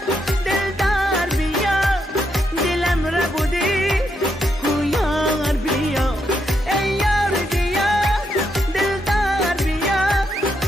دلدار بیا دلم را بودی یار بیا ای یار بیا دلدار بیا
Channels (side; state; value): both; normal; correlation 0.79